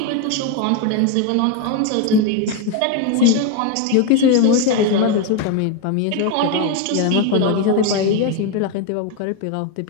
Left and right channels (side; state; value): both; different; correlation 0.02